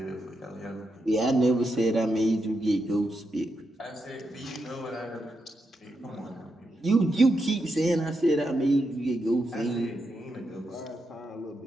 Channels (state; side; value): normal; both; correlation 0.84